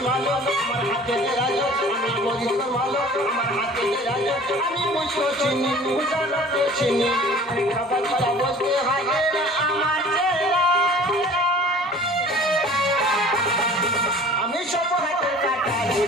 আমি সব হাতের কাটারি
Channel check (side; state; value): both; normal; correlation 0.47